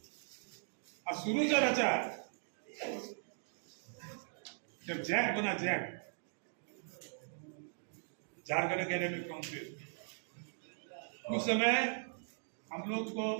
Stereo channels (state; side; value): silent; left; digital silence